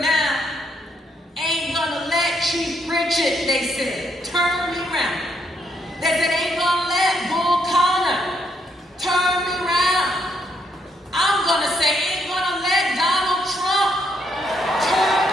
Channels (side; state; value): both; normal; correlation 0.74